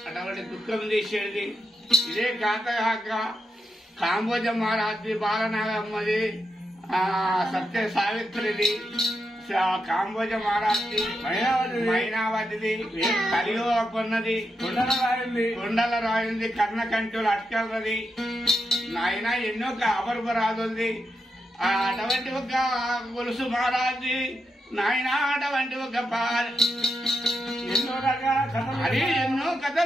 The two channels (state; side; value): normal; both; correlation 0.84